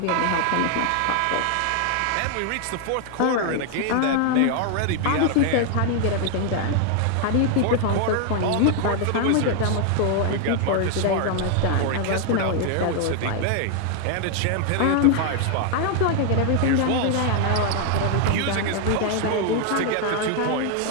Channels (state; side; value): different; both; correlation 0.00